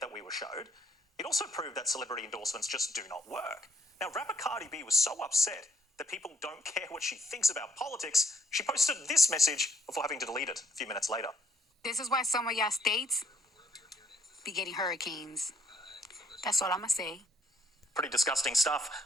that we were showed, it also proved that celebrity endorsements just do not work. Now, rapper Cardi B was so upset that people don't care what she thinks about politics, she posted this message before having to delete it a few minutes later. This is why some of y'all states be getting hurricanes. That's all I'm gonna say. Pretty disgusting stuff.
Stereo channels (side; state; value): both; normal; correlation 0.67